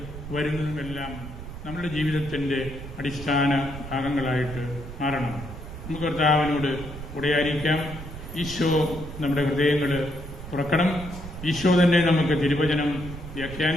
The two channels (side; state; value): right; noise; rumble, 11 dB below the sound